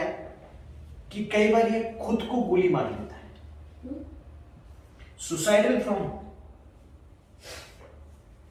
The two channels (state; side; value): identical; both; correlation 1.00